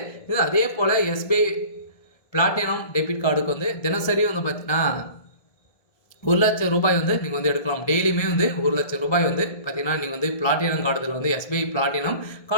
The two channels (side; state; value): right; late; 1.7 ms